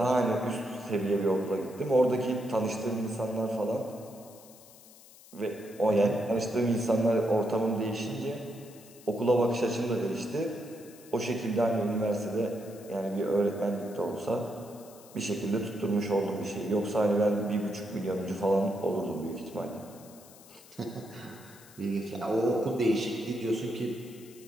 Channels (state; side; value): noise; left; hiss, 22 dB below the sound